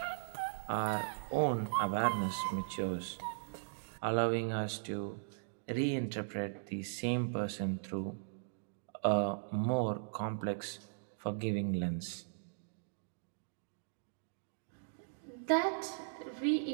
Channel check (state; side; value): silent; left; digital silence